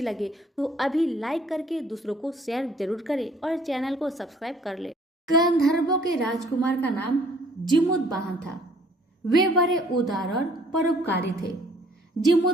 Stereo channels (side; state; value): both; normal; correlation 0.59